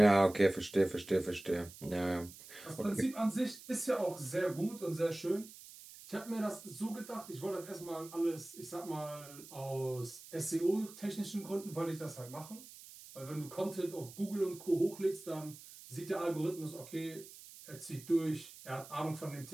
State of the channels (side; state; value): right; noise; hiss, 17 dB below the sound